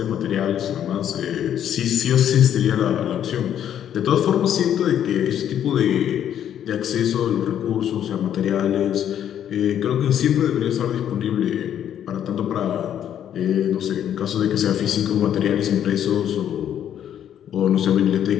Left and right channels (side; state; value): right; quieter; 10.0 dB